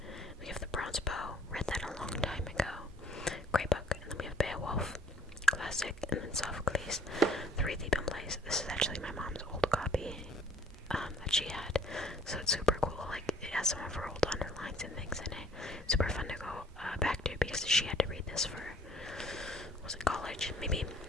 We have The Bronze Bow. Read that a long time ago. Great book. And then we have Beowulf. Classic. And then Sophocles. Three Thief and Plays. This is actually my mom's old copy that she had. So it's super cool. Like, it has some of her old underlines and things in it. Super fun to go back to because she had to read this for, was it college? Maybe.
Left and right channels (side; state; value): both; normal; correlation 0.58